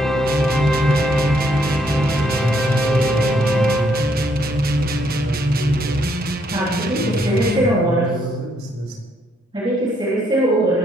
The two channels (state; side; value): normal; both; correlation 0.72